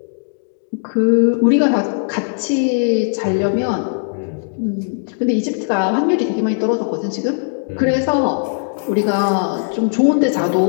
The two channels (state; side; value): silent; right; digital silence